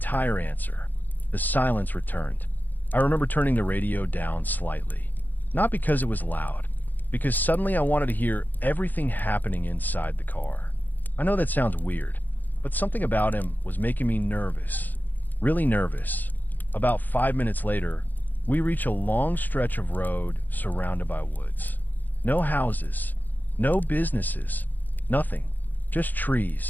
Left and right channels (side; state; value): right; late; 0.086 ms